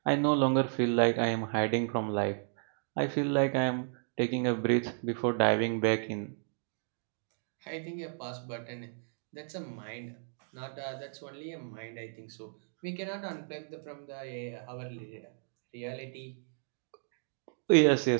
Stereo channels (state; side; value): silent; left; digital silence